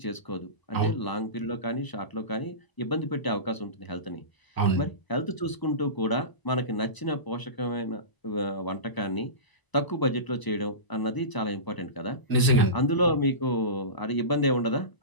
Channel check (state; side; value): late; right; 1.0 ms